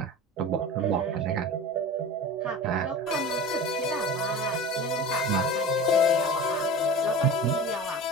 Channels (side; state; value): both; normal; correlation 0.33